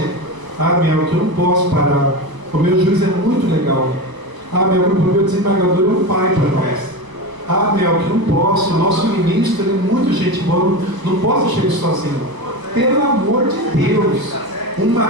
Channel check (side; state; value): left; late; 1.0 ms